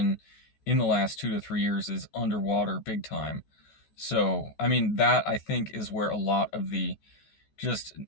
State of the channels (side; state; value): right; late; 14 ms